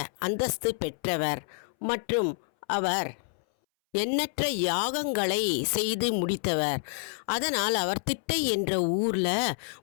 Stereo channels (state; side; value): silent; right; 59 dB below the other